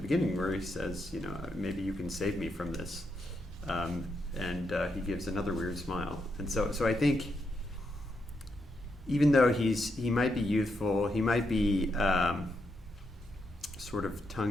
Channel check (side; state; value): both; normal; correlation 0.81